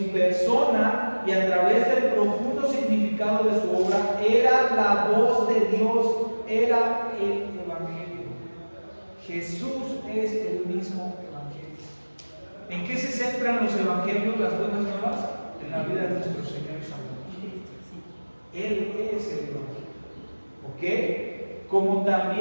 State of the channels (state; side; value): inverted; both; correlation -1.00